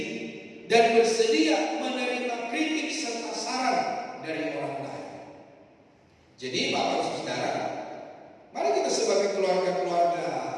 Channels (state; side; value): identical; both; correlation 1.00